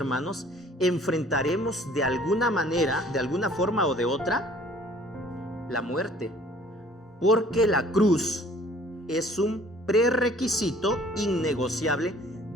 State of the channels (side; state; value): both; normal; correlation 0.54